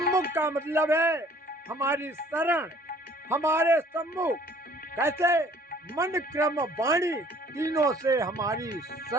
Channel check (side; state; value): both; normal; correlation 0.55